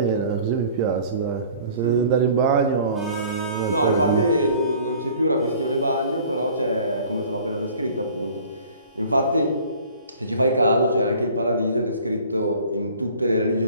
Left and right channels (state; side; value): inverted; both; correlation -0.49